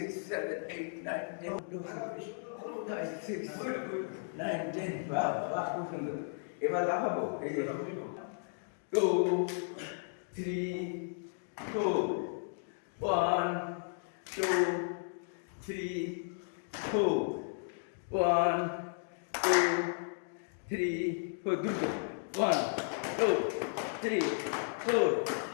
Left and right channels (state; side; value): silent; right; digital silence